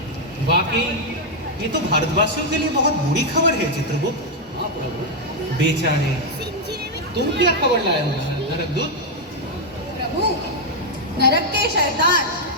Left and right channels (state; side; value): normal; both; correlation 0.00